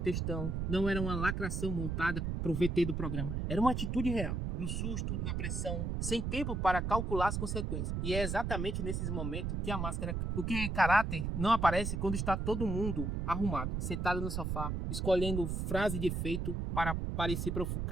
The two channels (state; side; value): noise; right; rumble, 1 dB below the sound